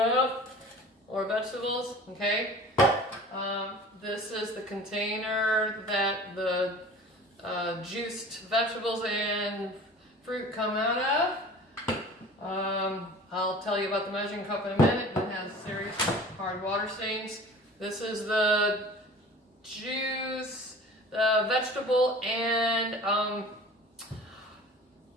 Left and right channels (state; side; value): normal; both; correlation 0.42